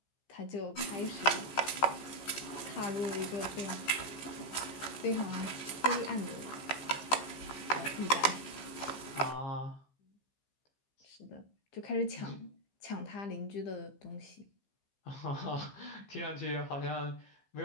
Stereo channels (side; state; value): right; late; 15 ms